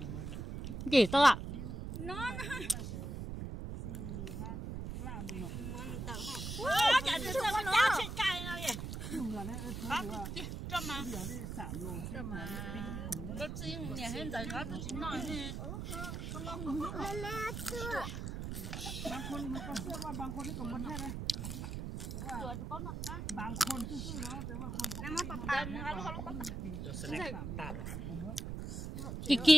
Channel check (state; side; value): noise; right; rumble, 5 dB below the sound